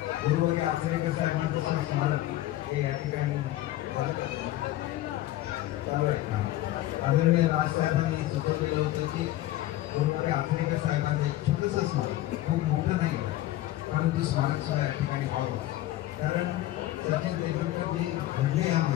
गुरुवारी आचरेकर साहेबांचं स्मारक हे या ठिकाणी चालू आहे। आदरणीय राजसाहेबांनी सुचवलेलं होतं की गुरुवारी आचरेकर साहेबांचं एक छोटंसं स्मारक, खूप मोठं नाही परंतु स्मारक सुद्धा या ठिकाणी व्हावं, कारण सचिन तेंडुलकर जे घडले या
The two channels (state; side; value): quieter; right; 15.2 dB